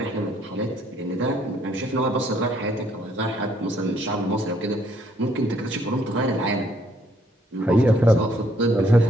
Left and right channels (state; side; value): normal; both; correlation 0.67